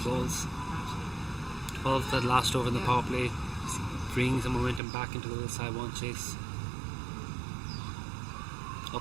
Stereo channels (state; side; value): drops out; left; at 4.8 s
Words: balls. 12 that last over in the power play, bringing some momentum back into the Saiwan chase.